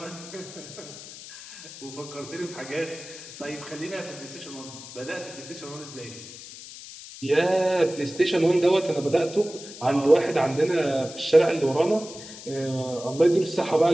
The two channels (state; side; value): noise; left; hiss, 14 dB below the sound